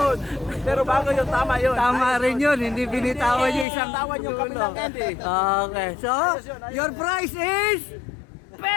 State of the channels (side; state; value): right; drops out; at 3.7 s